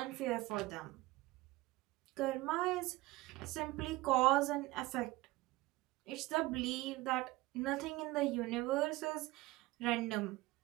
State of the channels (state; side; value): quieter; left; 19.3 dB